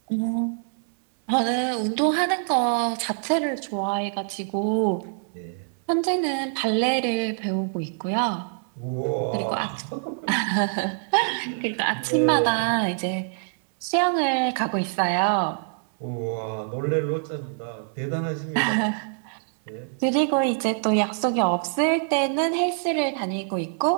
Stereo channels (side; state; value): left; silent; 61 dB below the other